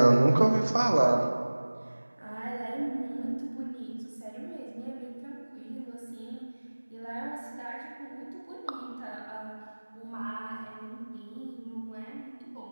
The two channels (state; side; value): inverted; both; correlation -1.00